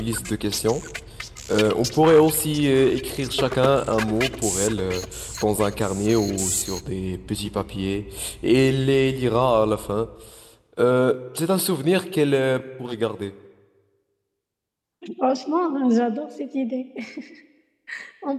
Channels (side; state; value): both; identical; correlation 1.00